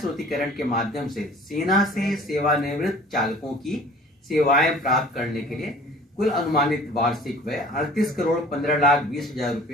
के माध्यम से सेना से सेवानिवृत्त चालकों की सेवाएं प्राप्त करने के लिए कुल अनुमानित वार्षिक व्यय 38,15,20,000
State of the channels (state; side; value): normal; both; correlation 0.48